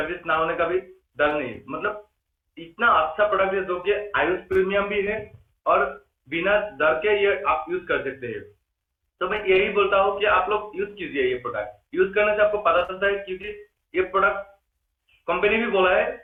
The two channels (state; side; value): identical; both; correlation 1.00